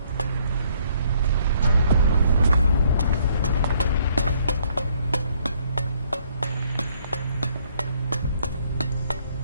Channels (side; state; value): both; inverted; correlation -0.65